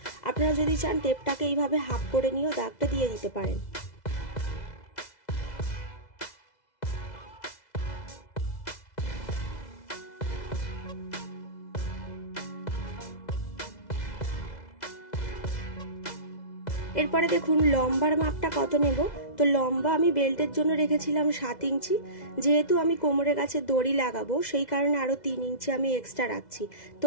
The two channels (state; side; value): late; right; 2.0 ms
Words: আপনারা যদি চান টেপটাকে এইভাবে হাফ করে নিয়েও দাগটা দিয়ে দিতে পারেন। এরপরে দেখুন লম্বার মাপটা কত নেব। তো তো লম্বা আমি বেল্টের জন্য রেখেছিলাম 7 ইঞ্চি, যেহেতু আমি কোমরের কাছে দড়ি লাগাবো সেই কারণে আরও 3 ইঞ্চি আমি এক্সট্রা রাখছি।